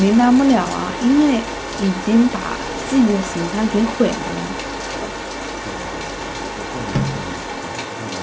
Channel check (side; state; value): both; identical; correlation 1.00